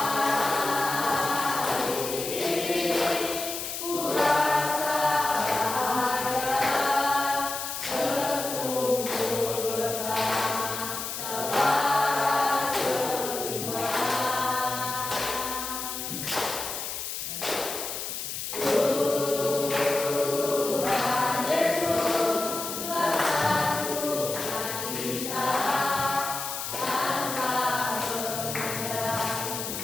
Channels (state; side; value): noise; left; hiss, 5 dB below the sound